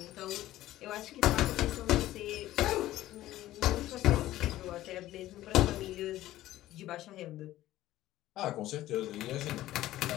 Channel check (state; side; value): quieter; right; 14.9 dB